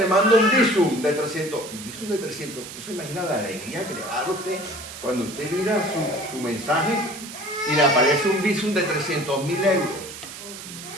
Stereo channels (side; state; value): right; noise; hiss, 12 dB below the sound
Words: manda un visum de 300. Un visum de 300. Usted se imagina la alegría que le va a dar a usted cuando usted mira su mensaje y le aparece un visum de 300.000 euros.